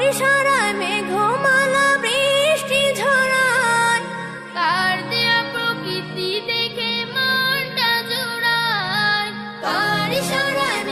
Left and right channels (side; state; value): both; identical; correlation 1.00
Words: ইশারায় মেঘমালা বৃষ্টি ঝরায়, কার দেয়া প্রকৃতি দেখে মনটা জোড়ায়। কার ইশারায়